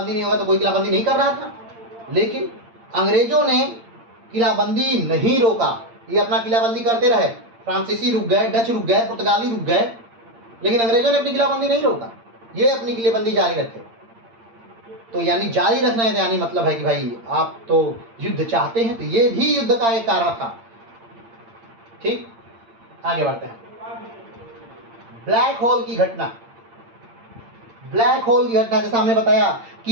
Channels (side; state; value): left; late; 8.8 ms